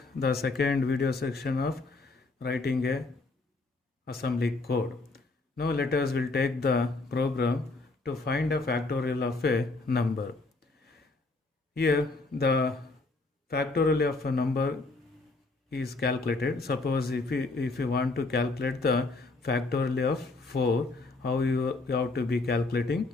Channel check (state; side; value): quieter; right; 3.4 dB